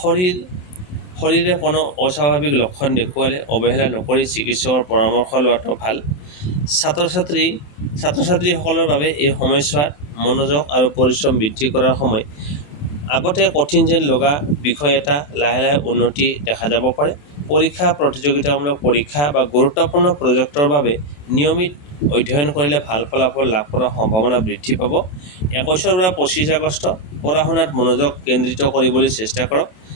শৰীৰে কোনো অস্বাভাৱিক লক্ষণ দেখুৱালে অৱহেলা নকৰি চিকিৎসকৰ পৰামৰ্শ লোৱাটো ভাল। ছাত্ৰ-ছাত্ৰীসকলৰ বাবে এই সময়ছোৱাত মনোযোগ আৰু পৰিশ্ৰম বৃদ্ধি কৰাৰ সময়। আগতে কঠিন যেন লগা বিষয় এটা লাহে লাহে উন্নতি দেখা যাব পাৰে। পৰীক্ষা, প্ৰতিযোগিতামূলক পৰীক্ষা বা গুৰুত্বপূৰ্ণ প্ৰজেক্টৰ বাবে নিয়মিত অধ্যয়ন কৰিলে ভাল ফলাফল লাভ কৰাৰ সম্ভাৱনা বৃদ্ধি পাব। 21 পৰা 25 আগষ্ট পঢ়া-শুনাত মনোযোগ কেন্দ্ৰিত কৰিবলৈ চেষ্টা কৰক।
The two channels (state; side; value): late; right; 28 ms